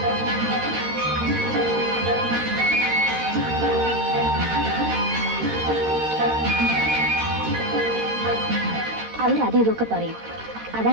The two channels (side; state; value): left; late; 13 ms